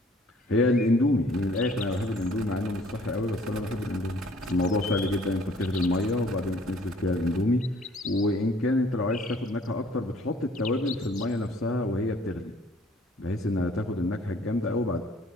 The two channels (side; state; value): both; normal; correlation 0.57